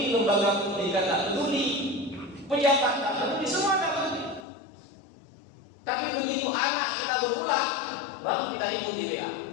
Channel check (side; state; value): right; drops out; at 4.5 s